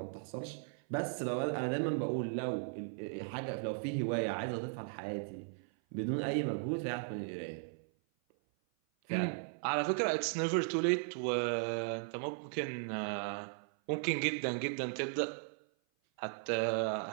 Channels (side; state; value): left; silent; 53 dB below the other